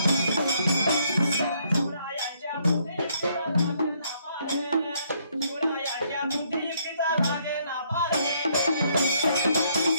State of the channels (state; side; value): inverted; both; correlation -0.69